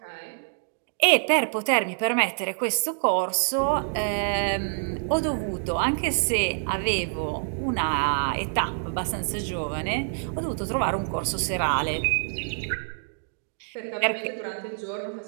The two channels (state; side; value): silent; left; digital silence